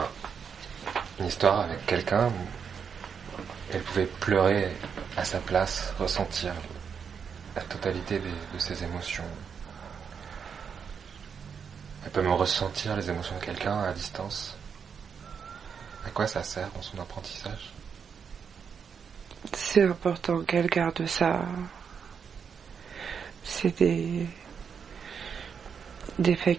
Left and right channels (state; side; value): quieter; left; 6.7 dB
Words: une histoire avec quelqu'un où elle pouvait pleurer à sa place, ressentir la totalité de ses émotions. Elle peut me ressentir les émotions de quelqu'un à distance. À quoi ça sert dans son apprentissage? C'est important qu'elle garde ça. C'est des